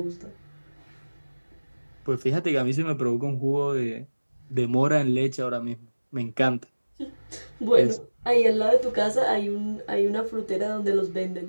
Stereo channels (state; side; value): inverted; both; correlation -1.00